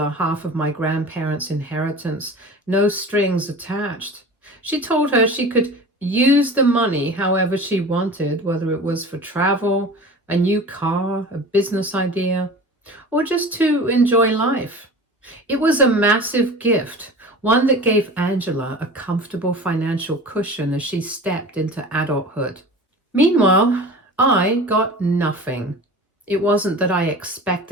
half of my grandparents' inheritance, no strings attached. She told her she could use the money however she wanted, whether it was for travel, a new car, a business idea, or just to enjoy life. It was a massive gift, one that gave Angela a comfortable financial cushion as she stepped into adulthood. Meanwhile, I got nothing. It wasn't that I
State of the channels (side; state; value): both; normal; correlation 0.37